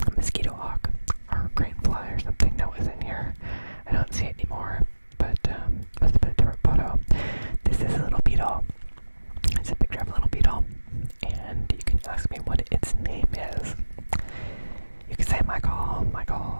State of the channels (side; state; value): both; inverted; correlation -1.00